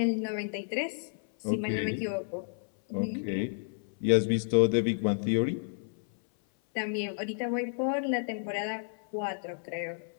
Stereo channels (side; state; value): right; silent; 57 dB below the other